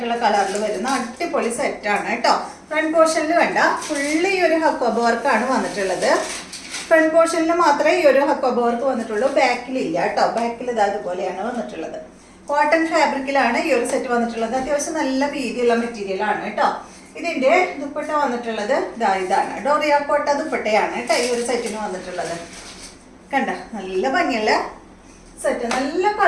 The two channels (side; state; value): both; identical; correlation 1.00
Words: കളറിൽ വരുന്ന അടിപൊളി സെറ്റാണ് കേട്ടോ. ഫ്രണ്ട് പോർഷനിൽ വേണ്ട ഫുള്ള് ഈ ഒരു ഹക്കോബ വർക്കാണ് വന്നിട്ടുള്ളത്. ഫ്രണ്ട് പോർഷനിൽ മാത്രമേ ഈ ഒരു ഹക്കോബ വർക്ക് വന്നിട്ടുള്ളൂ, ബാക്കിലില്ല കേട്ടോ. ബാക്കിൽ ഇത് അതുപോലെയാണ് വന്നിട്ടുള്ളത്. കോട്ടൺ ഫാബ്രിക്കിലാണ് ഈ ഒരു സെറ്റ് വന്നിട്ടുള്ളത്. അത്യാവശ്യം നല്ല വീതിയുള്ള മെറ്റീരിയൽ ആണ് കേട്ടോ. ഇതിന്റെ ദുപ്പട്ട വന്നിട്ടുള്ളത് ഇതാണ്, ഡോറിയ കോട്ട ദുപ്പട്ടയാണ് കേട്ടോ ഈ ഒരു സെറ്റിന് വന്നിട്ടുള്ളത്. കണ്ട, നല്ല ഭംഗിയുള്ള സെറ്റ്, നല്ല